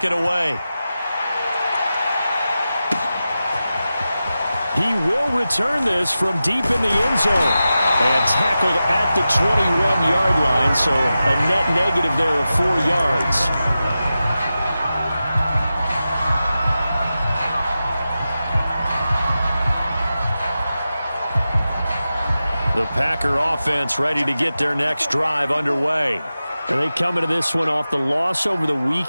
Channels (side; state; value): both; inverted; correlation -0.93